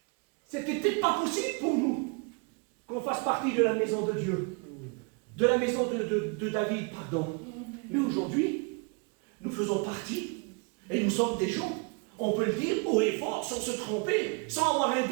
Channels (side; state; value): left; quieter; 33.6 dB